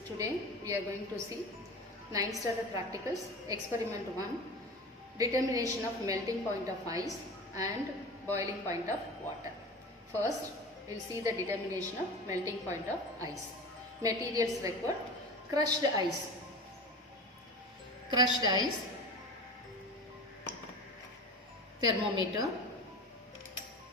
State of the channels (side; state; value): both; normal; correlation 0.32